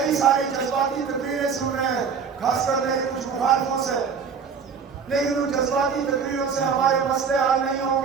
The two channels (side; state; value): left; quieter; 6.2 dB